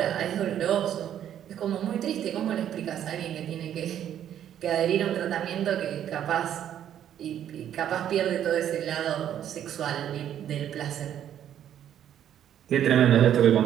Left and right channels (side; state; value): left; quieter; 10.3 dB